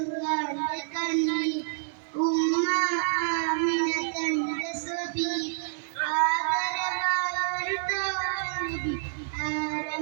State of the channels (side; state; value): left; silent; 59 dB below the other